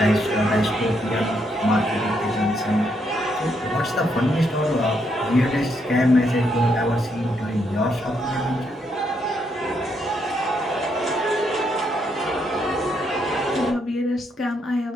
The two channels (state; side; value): normal; both; correlation 0.76